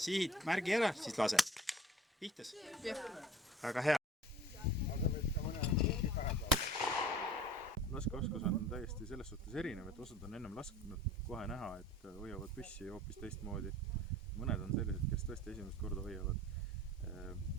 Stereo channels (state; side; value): normal; both; correlation 0.45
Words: märgi ära, siis lase. Pihtas? Väga hea. Laskeoskus on täiesti selles suhtes erinev, et osad on ennem lasknud kohe näha, et hoiavad püssi hoopis teistmoodi. Mõned on sellised, kes tõesti esimest korda hoiavad.